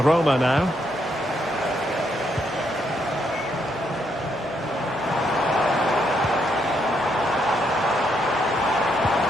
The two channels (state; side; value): normal; both; correlation 0.76